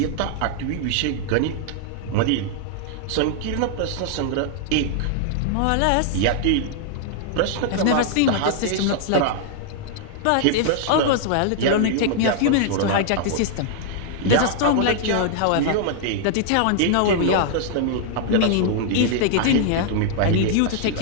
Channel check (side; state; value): both; different; correlation -0.01